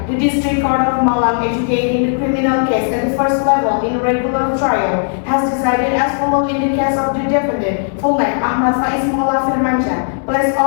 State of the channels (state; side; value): silent; right; digital silence